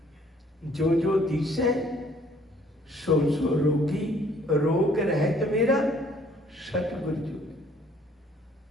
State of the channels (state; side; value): normal; both; correlation 0.61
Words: जो जो दिसे सो सो रोगी, रोग रहत मेरा सतगुर जोगी।